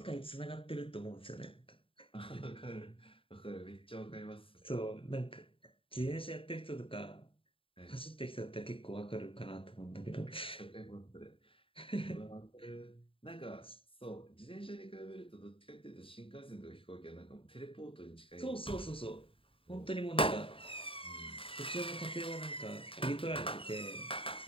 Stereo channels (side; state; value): right; late; 0.26 ms